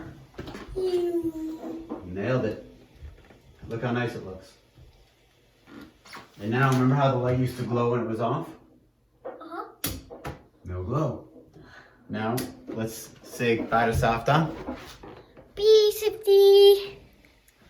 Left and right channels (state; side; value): identical; both; correlation 1.00